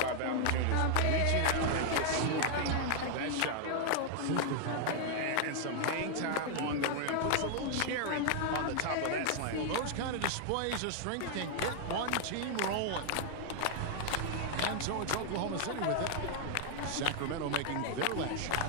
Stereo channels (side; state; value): both; different; correlation 0.00